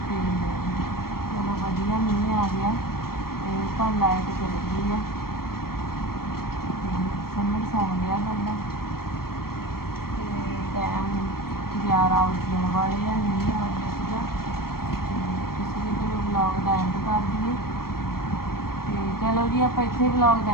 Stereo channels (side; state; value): right; late; 0.94 ms